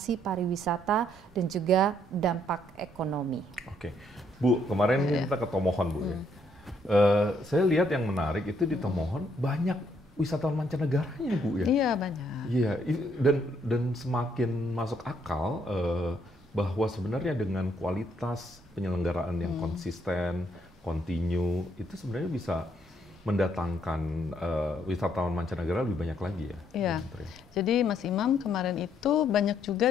pariwisata dan juga dampak ekonomi. Oke, Bu, kemarin kita ke Tomohon, Bu. Saya lihat yang menarik itu di Tomohon banyak wisatawan mancanegaranya, Bu, ya. Iya, banyak. Iya, dan semakin masuk akal bahwa sebenarnya dengan kualitas penyelenggaraan yang konsisten, kontinu, itu sebenarnya bisa mendatangkan wisatawan mancanegara lebih banyak lagi ya. Iya. Jadi Mas Imam, kemarin itu banyak juga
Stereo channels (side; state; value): both; normal; correlation 0.70